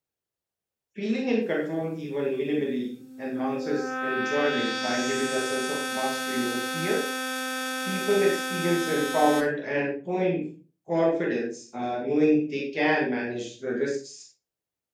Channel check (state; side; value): identical; both; correlation 1.00